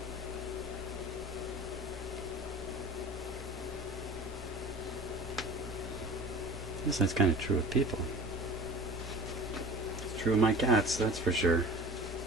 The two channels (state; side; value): normal; both; correlation 0.39